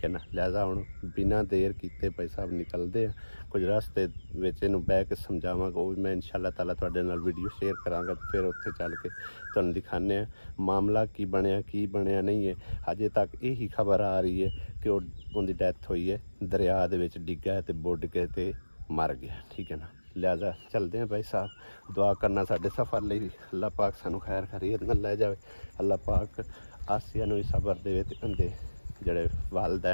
ਹੈ ਨਾ। ਲਿਹਾਜ਼ਾ ਹੁਣ ਬਿਨਾਂ ਦੇਰ ਕੀਤੇ ਭਾਈ ਸਾਹਿਬ ਨਿਕਲਦੇ ਆ, ਕੁਝ ਰਸਤੇ ਵਿੱਚ ਇਹਨੂੰ ਬਹਿ ਕੇ ਸਮਝਾਵਾਂਗਾ, ਉਹ ਵੀ ਮੈਂ ਇਨਸ਼ਾਅੱਲਾ ਤਾਲਾ ਤੁਹਾਡੇ ਨਾਲ ਵੀਡੀਓ ਸ਼ੇਅਰ ਕਰਾਂਗਾ। ਫਿਰ ਉੱਥੇ ਚੱਲ ਕੇ ਤੁਹਾਨੂੰ ਦਿਖਾਉਂਦੇ ਆ ਮਾਮਲਾ ਕੀ ਬਣਿਆ ਨਹੀਂ ਹੈ। ਅਜੇ ਤੱਕ ਇਹੀ ਖਬਰ ਆ ਰਹੀ ਹੈ ਕਿ ਉਹਦੀ ਡੈਥ ਹੋਈ ਹੈ, ਦਰਿਆ ਦੇ ਵਿੱਚ ਡਿੱਗਾ ਤੇ ਬੁੱਢ ਕੇ ਤੇ ਮਰ ਗਿਆ, ਠੀਕ ਹੈ ਨਾ। ਲਿਹਾਜ਼ਾ ਚਲਦੇ हैं भाई साहब, दुआ करना साढ़े सफ़र ਲਈ ਵੀ ਅੱਲਾਹ ਪਾਕ ਸਾਨੂੰ ਖੈਰ ਖੈਰੀਅਤ ਨਾਲ ਲੈ ਜਾਵੇ। ਅੱਲਾਹ ਪਾਕ ਆਸੀਆ ਨੂੰ ਵੀ ਸਬਰ ਦੇਵੇ ਤੇ ਉਹਦੇ ਜਿਹੜੇ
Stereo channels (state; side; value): inverted; both; correlation -1.00